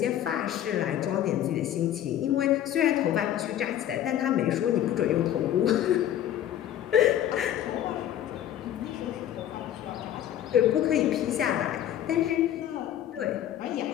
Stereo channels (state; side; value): quieter; right; 11.4 dB